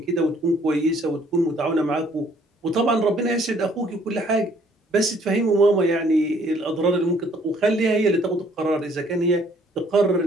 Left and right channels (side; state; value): both; normal; correlation 0.62